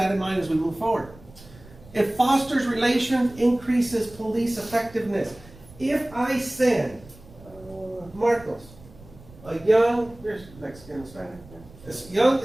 in mind as we move forward. It fosters relations, increases police effectiveness. If I send Marcos, a young, there's Mexican, Hispanic, this young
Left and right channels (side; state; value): right; noise; rumble, 21 dB below the sound